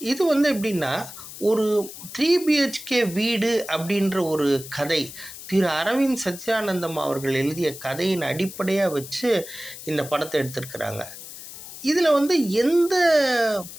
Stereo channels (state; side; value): noise; left; hiss, 13 dB below the sound